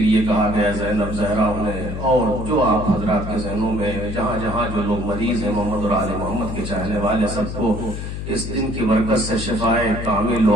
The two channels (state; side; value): noise; left; hum, 6 dB below the sound